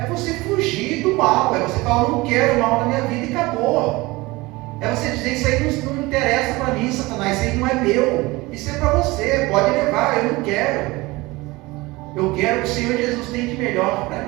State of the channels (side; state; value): left; quieter; 21.7 dB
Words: você fugir do mal, é você falar: eu não quero mal na minha vida, e acabou. É você dizer: isso aí não interessa para mim, Satanás, isso aí não é meu, isso é para você, pode levar, eu não quero. Eu quero o que o Senhor Jesus tem de melhor para